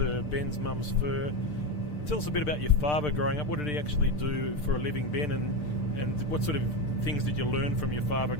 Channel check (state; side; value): late; right; 6.7 ms